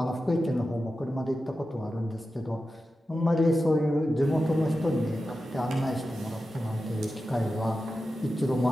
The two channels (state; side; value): normal; both; correlation 0.92